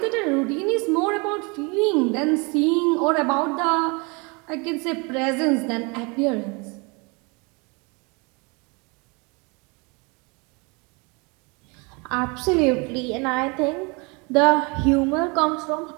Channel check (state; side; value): quieter; left; 29.7 dB